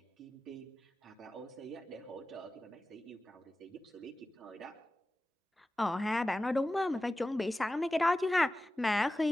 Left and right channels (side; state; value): both; normal; correlation 0.95